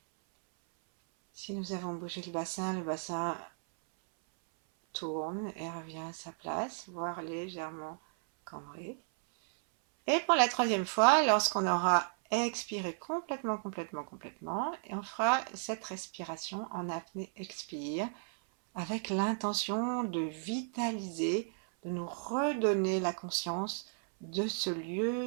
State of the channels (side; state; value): left; silent; 55 dB below the other